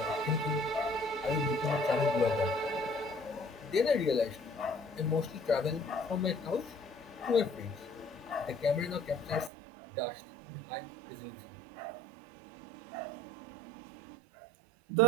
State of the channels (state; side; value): drops out; left; at 9.5 s